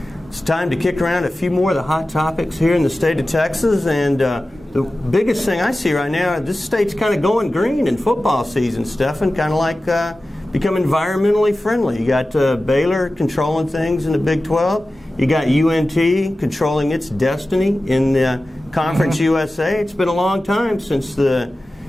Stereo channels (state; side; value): normal; both; correlation 0.95